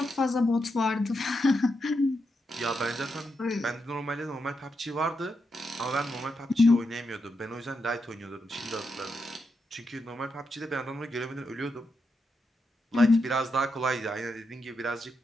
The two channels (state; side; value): normal; both; correlation 0.84